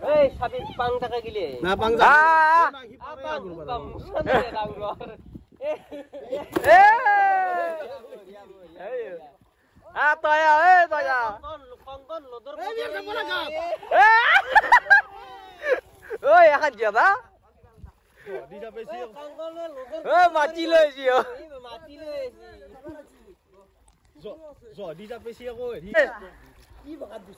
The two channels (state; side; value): identical; both; correlation 1.00